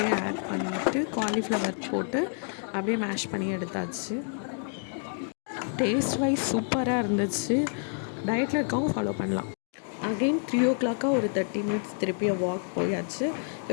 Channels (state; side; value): silent; right; 57 dB below the other